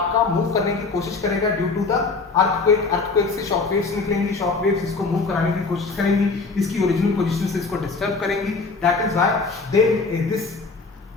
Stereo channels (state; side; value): quieter; right; 4.1 dB